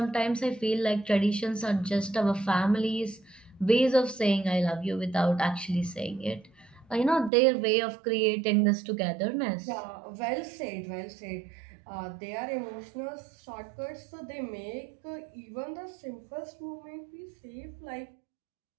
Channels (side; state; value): left; drops out; at 7.3 s